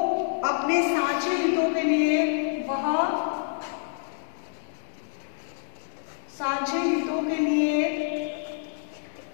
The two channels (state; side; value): silent; right; digital silence